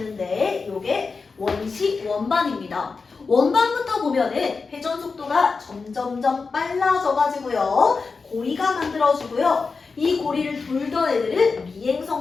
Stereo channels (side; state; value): right; quieter; 4.6 dB